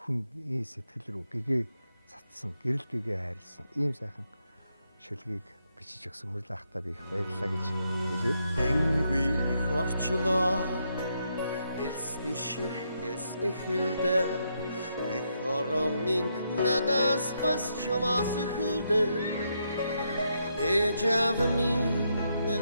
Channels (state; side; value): inverted; both; correlation -0.79